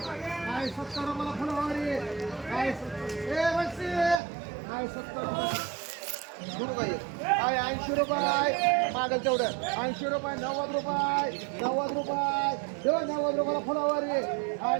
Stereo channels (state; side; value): drops out; left; at 4.2 s